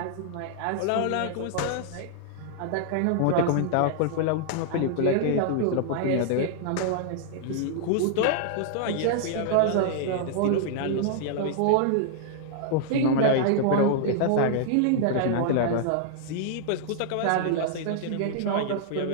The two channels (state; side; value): different; both; correlation -0.01